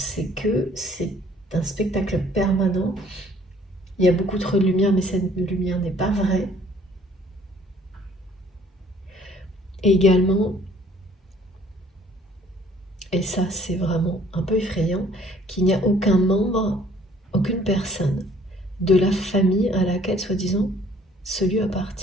que c'est un spectacle permanent. Il y a beaucoup trop de lumière, mais cette lumière n'est pas vraie. Et également, et ça c'est vraiment un peu effrayant, qu'il n'y a aucun membre, aucune personne de la famille à laquelle, soi-disant, ce lieu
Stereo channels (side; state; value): both; normal; correlation 0.58